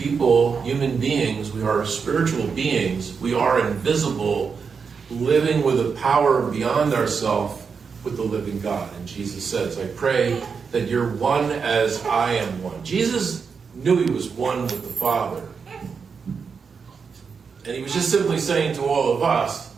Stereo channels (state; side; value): quieter; left; 5.7 dB